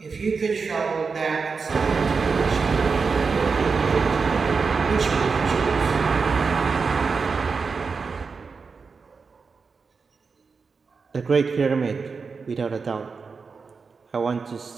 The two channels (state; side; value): quieter; left; 4.9 dB